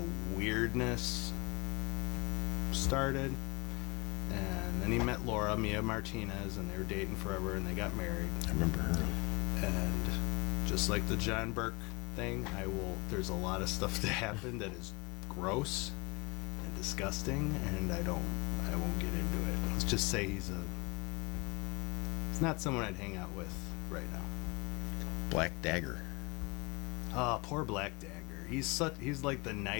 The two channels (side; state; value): right; quieter; 27.1 dB